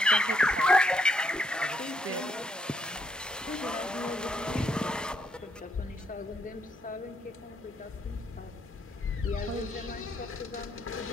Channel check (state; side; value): normal; both; correlation 0.74